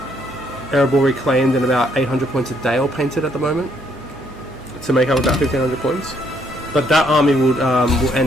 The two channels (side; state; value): both; normal; correlation 0.69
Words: Erebor Reclaimed and about 800 points a day all painted at the moment to make up about 1500 points. But that army will